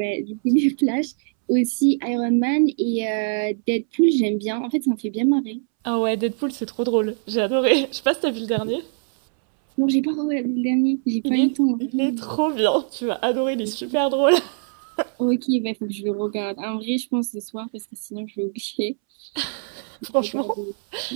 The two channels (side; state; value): left; silent; 64 dB below the other